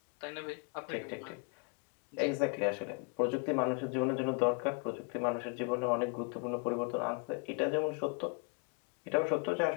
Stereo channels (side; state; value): right; quieter; 36.1 dB